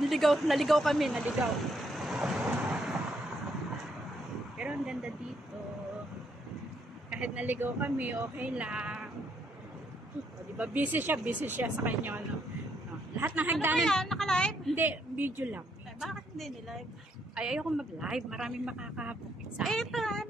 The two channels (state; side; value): normal; both; correlation 0.73